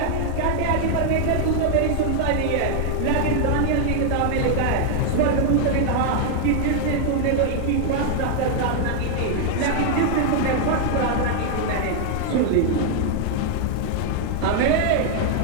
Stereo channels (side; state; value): both; different; correlation 0.00